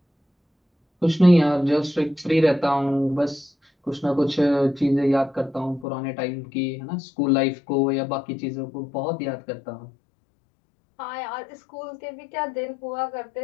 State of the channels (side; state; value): right; drops out; at 5.9 s